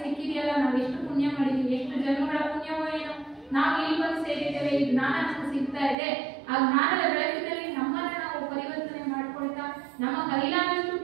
ಸಿಕ್ಕಿದೆಯಲ್ಲ, ನಾವು ಎಷ್ಟು ಪುಣ್ಯ ಮಾಡಿದೀವಿ, ಎಷ್ಟು ಜನ್ಮಗಳ ಪುಣ್ಯವೋ ಏನೋ ನಾವು ಇಲ್ಲಿ ಬಂದು ಸೇರಿದ್ದೇವೆ, ಈ ಜ್ಞಾನ ನಮಗೆ ಸಿಗ್ತಾ ಇದೆ. ಆ ಜ್ಞಾನದ ಬೆಳಕಿನಲ್ಲಿ ನಮ್ಮನ್ನ ನಾವು ಪರಿವರ್ತನೆ ಮಾಡ್ಕೊಳ್ತಾ, ನಮ್ಮ ಕೈಲಾದಷ್ಟು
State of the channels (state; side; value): drops out; left; at 6.0 s